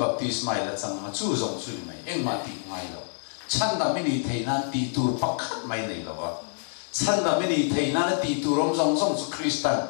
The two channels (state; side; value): silent; right; digital silence